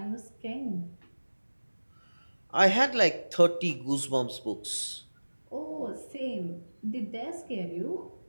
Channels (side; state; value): both; inverted; correlation -1.00